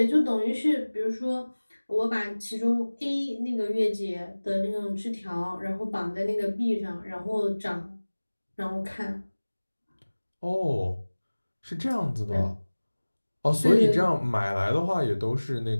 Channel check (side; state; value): both; inverted; correlation -1.00